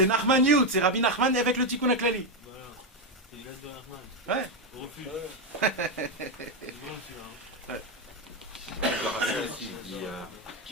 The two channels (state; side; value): normal; both; correlation 0.06